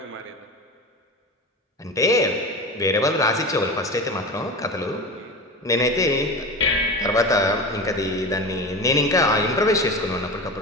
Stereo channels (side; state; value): both; normal; correlation 0.27